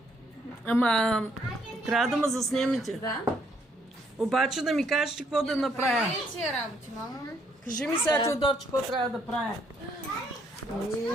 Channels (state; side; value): normal; both; correlation 0.70